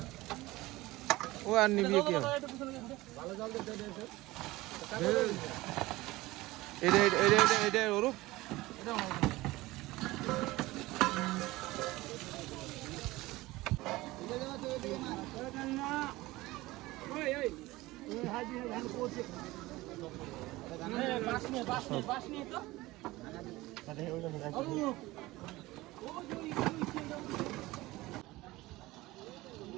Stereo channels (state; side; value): quieter; left; 19.3 dB